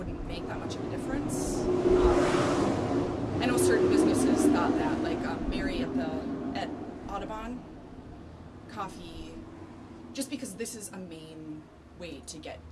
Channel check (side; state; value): both; identical; correlation 1.00